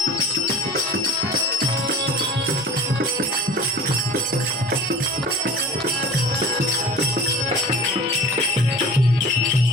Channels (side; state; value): both; normal; correlation 0.40